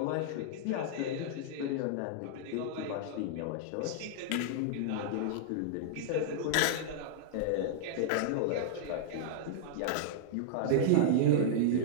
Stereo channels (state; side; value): different; both; correlation -0.01